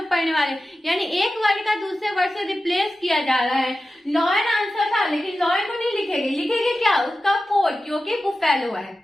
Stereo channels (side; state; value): both; normal; correlation 0.93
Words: पढ़ने वाले, यानी एक वर्ड का दूसरे वर्ड से रिप्लेस किया जा रहा है। लॉयन आंसर था, लेकिन लॉयन को नहीं लिखेंगे, लिखेंगे क्या, उसका कोड, क्योंकि बुफेलो है।